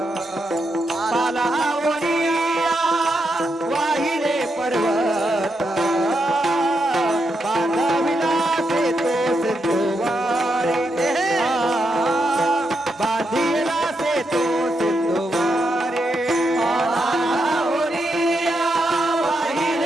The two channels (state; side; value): normal; both; correlation 0.82